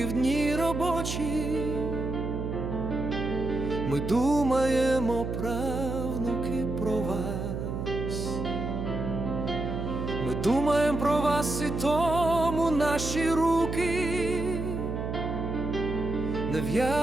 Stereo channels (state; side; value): noise; right; hum, 4 dB below the sound